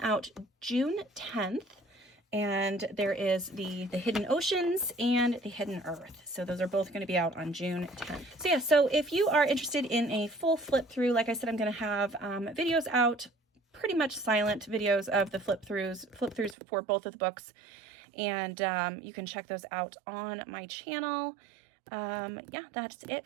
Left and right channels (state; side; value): drops out; left; at 16.6 s